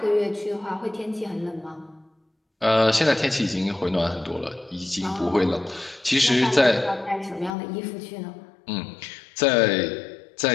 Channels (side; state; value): right; drops out; at 7.5 s